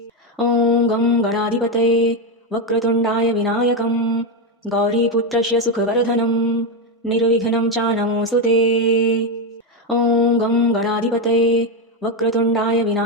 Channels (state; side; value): normal; both; correlation 0.08